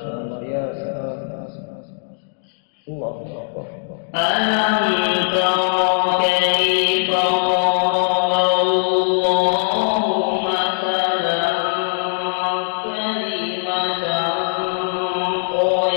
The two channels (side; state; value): right; silent; digital silence